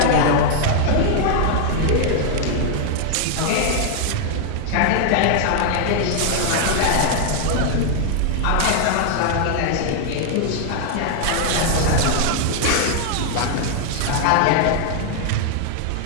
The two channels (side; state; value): both; different; correlation 0.00